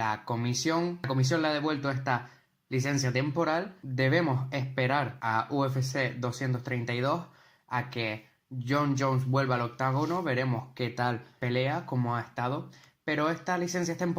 comisión le ha devuelto esta licencia temporal. Debemos esperar a UFC 232 a que Jon Jones vuelva al octágono, veremos qué tal pelea, cómo ha estado, pero esta licencia es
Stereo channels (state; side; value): identical; both; correlation 1.00